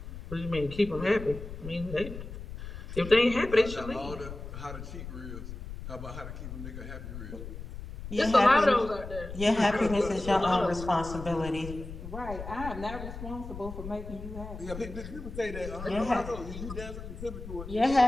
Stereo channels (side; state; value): left; noise; rumble, 10 dB below the sound